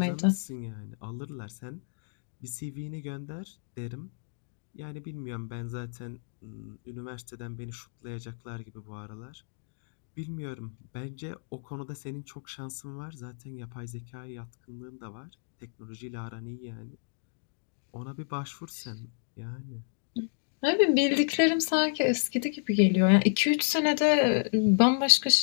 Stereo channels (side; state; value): right; silent; digital silence